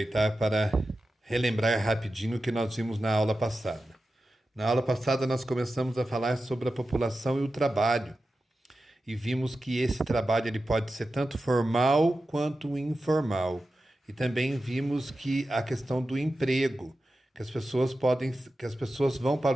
para relembrar rapidinho o que nós vimos na aula passada. Na aula passada, nós começamos a falar sobre a população e o trabalho, e vimos que esse trabalho ele pode ser tanto formal quanto informal. E também vimos que a questão do emprego, que as pessoas vão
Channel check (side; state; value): both; normal; correlation 0.92